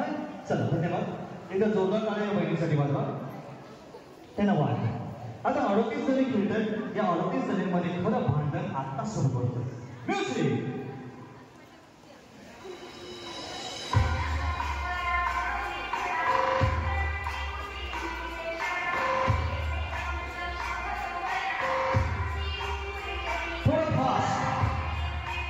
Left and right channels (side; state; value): both; identical; correlation 1.00